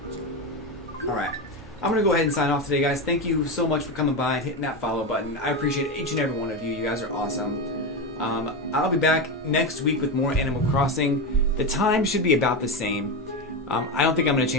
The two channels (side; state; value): both; normal; correlation 0.15